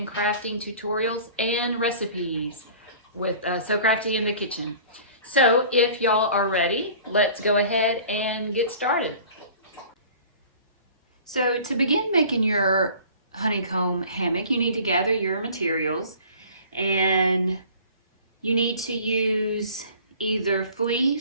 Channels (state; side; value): inverted; both; correlation -0.46